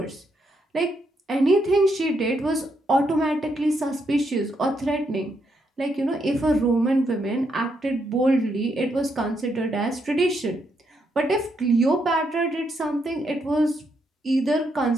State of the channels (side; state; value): both; normal; correlation 0.78